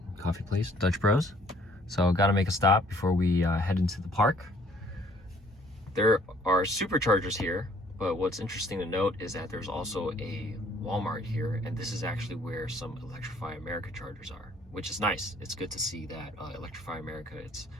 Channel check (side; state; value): both; normal; correlation 0.60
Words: coffee place, Dutch Bros. So gotta make a stop before we head into the park. There are superchargers here, but what's interesting to note is that there's also a Walmart here, and this is actually where some Electrify America chargers are, which is nice. It's good to see that Electrify America, it's